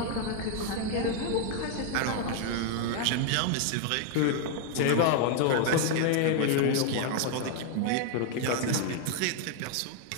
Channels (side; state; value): both; different; correlation 0.00